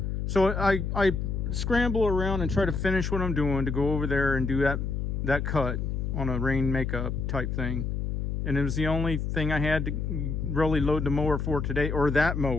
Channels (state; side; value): noise; left; hum, 2 dB below the sound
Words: So I scramble around and try to finish what I'm doing to go over there and do that cut on a rain makeup type thing. And it was the only thing I had to really load the mower for today, or that